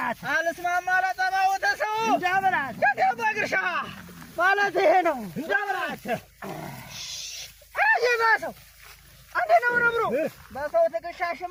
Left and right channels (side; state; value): both; identical; correlation 1.00